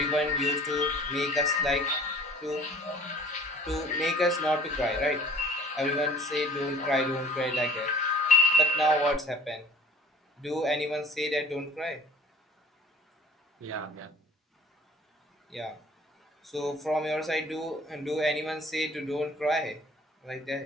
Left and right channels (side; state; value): both; normal; correlation 0.50